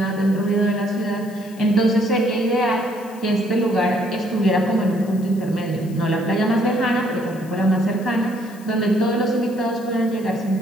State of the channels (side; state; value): left; noise; hiss, 23 dB below the sound